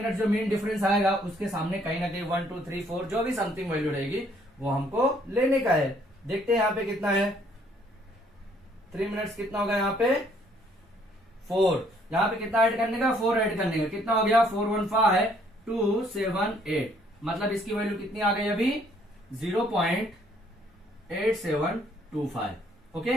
जो मेन डिफरेंस आएगा उसके सामने कहीं ना कहीं 1 2 3 4 जो भी समथिंग वैल्यू रहेगी वो हमको लेने का है। देखते हैं यहाँ पे कितना है, 3 मिनट्स कितना होगा यहाँ पे 4, यहाँ पे कितना ऐड करने का, 4 ऐड करने का, कितना हो गया 415278, मतलब इसकी वैल्यू कितनी आ गई अभी 0.8725। ओके,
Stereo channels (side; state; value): both; normal; correlation 0.64